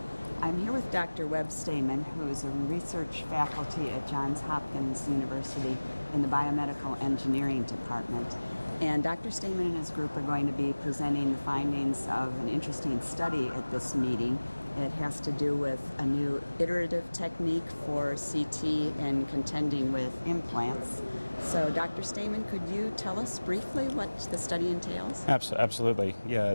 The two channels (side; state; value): both; inverted; correlation -1.00